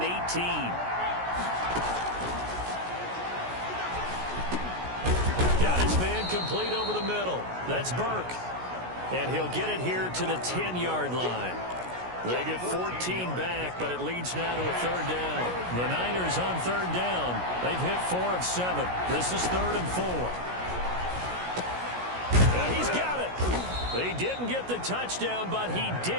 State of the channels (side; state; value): left; late; 16 ms